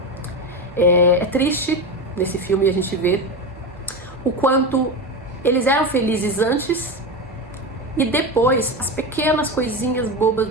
É triste nesse filme a gente vê o quanto eles eram felizes antes e depois as pequenas coisinhas bobas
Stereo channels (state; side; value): normal; both; correlation 0.19